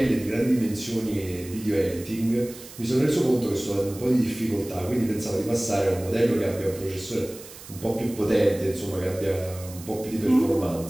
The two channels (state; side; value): noise; right; hiss, 17 dB below the sound